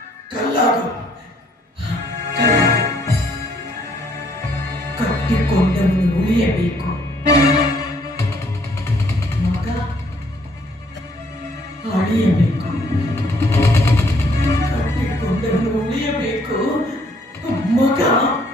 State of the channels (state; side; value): normal; both; correlation 0.65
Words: ಕಲ್ಲಾಗು, ಕಟ್ಟಿಕೊಂಡವನು ಉಳಿಯಬೇಕು. ಮಗ ಅಳಿಯಬೇಕು, ಕಟ್ಟಿಕೊಂಡವನು ಉಳಿಯಬೇಕು, ಮಗ